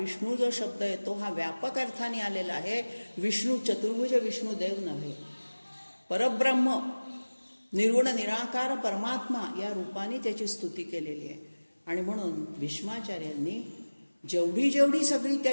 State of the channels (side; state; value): both; inverted; correlation -1.00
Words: जो शब्द येतो हा व्यापक अर्थाने आलेला आहे. विष्णू चतुर्भुज विष्णुदेव नव्हे. परब्रह्म निर्गुण निराकार परमात्मा या रूपाने त्याची स्तुती केलेली आहे. आणि म्हणून भीष्माचार्यांनी जेवढी जेवढी सगळी